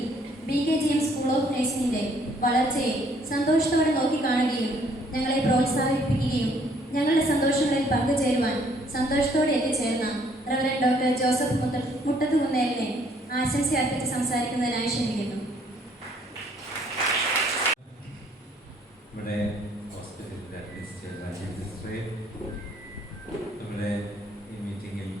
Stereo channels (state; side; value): normal; both; correlation 0.63